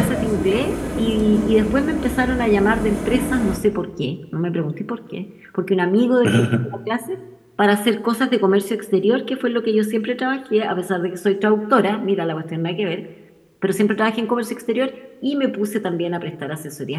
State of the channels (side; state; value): both; identical; correlation 1.00